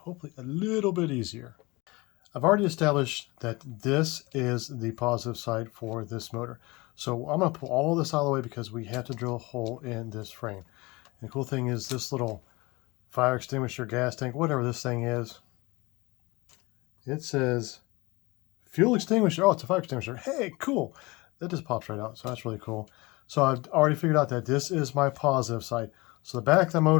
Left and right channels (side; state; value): right; quieter; 23.6 dB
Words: a little bit easier. I've already established that this is the positive side for this motor. So I'm going to pull all this out of the way because we have to drill a hole in this frame. And the cool thing is this little fire extinguisher, gas tank, whatever this thing is, it says fuel extinguisher. Oh, it's a fire extinguisher. Hey, cool. That just pops right out. So that's really cool. So I've already figured out that this is my positive side. So the back of the